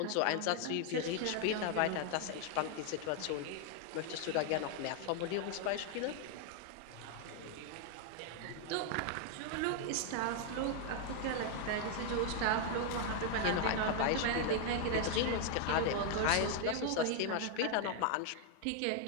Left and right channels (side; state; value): both; different; correlation 0.00